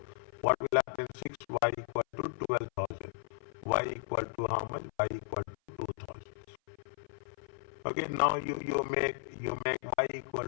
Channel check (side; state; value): right; silent; 54 dB below the other